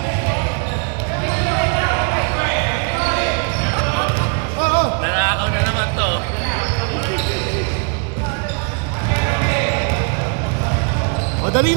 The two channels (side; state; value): left; quieter; 36.3 dB